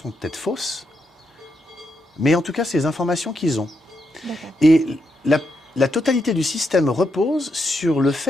peut-être fausses, mais en tout cas, c'est les informations qu'ils ont. D'accord. Et la totalité du système repose sur le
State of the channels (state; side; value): normal; both; correlation 0.81